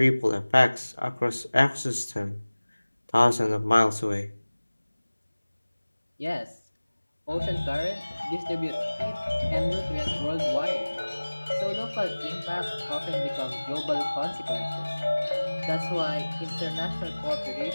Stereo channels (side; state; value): both; inverted; correlation -1.00